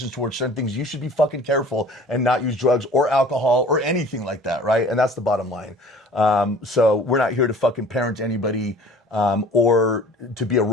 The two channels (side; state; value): both; normal; correlation 0.47